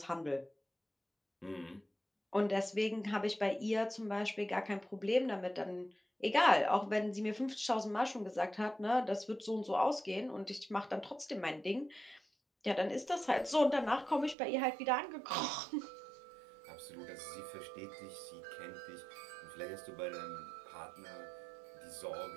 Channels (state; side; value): drops out; left; at 14.4 s